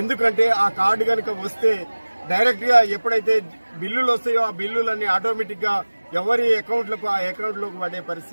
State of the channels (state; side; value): inverted; both; correlation -1.00